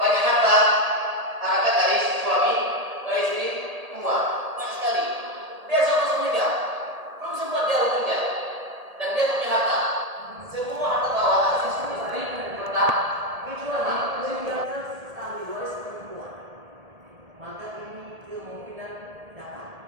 harta, harkat dari suami ke istri tua banyak sekali. Dia langsung menikah, belum sempat dia bekerja dan dia punya harta. Semua harta bawaan si istri tetap kecuali meninggalkan ahli waris perempuan, maka ini kemungkinan dapat.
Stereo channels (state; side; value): late; left; 1.8 ms